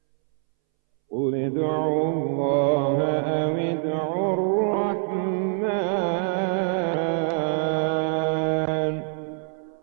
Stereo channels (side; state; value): left; silent; 62 dB below the other